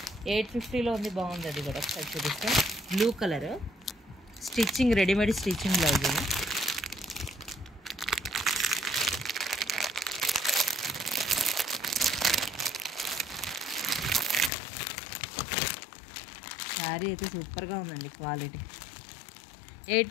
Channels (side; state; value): right; drops out; at 14.5 s